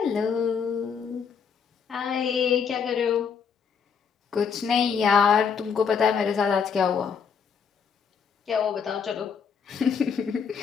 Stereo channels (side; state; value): right; quieter; 6.5 dB